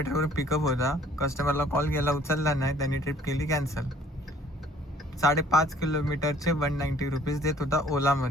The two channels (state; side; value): normal; both; correlation 0.56